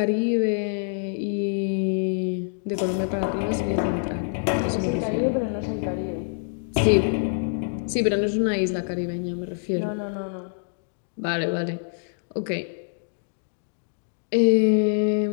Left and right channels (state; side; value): silent; right; digital silence